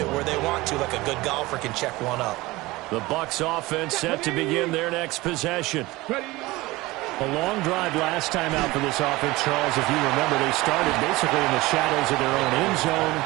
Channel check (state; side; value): quieter; left; 20.4 dB